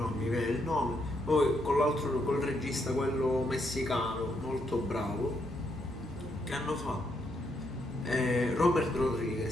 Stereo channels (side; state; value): both; normal; correlation 0.77